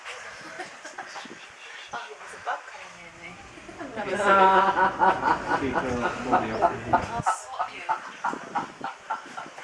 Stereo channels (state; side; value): identical; both; correlation 1.00